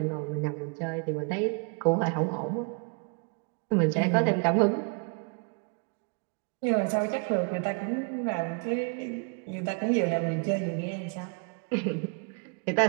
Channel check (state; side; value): quieter; left; 35.7 dB